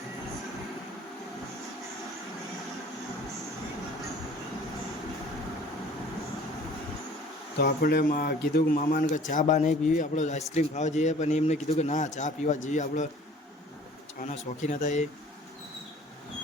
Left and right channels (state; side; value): normal; both; correlation 0.50